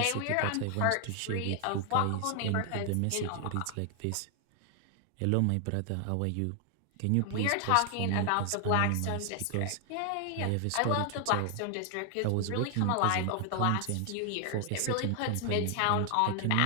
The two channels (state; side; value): different; both; correlation 0.00